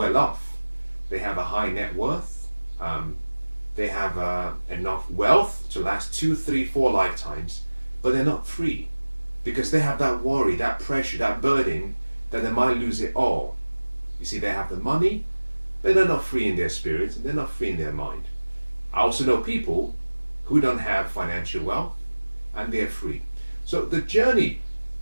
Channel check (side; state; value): both; inverted; correlation -1.00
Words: off. They have a high net worth. They have enough wealth to last 2, 3, 4 lifetimes, but they're not free because they have that worry, that pressure, that burden that they might lose it all. You see, they have the money, but they're not free in their spirit and they're not free in their mind. I also know people who don't have financial wealth and they're free. So the journey